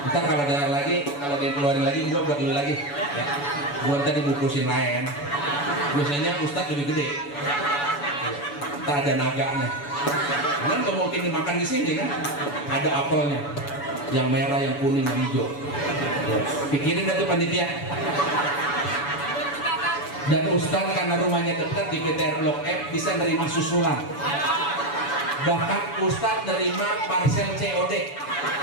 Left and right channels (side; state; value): right; late; 7.0 ms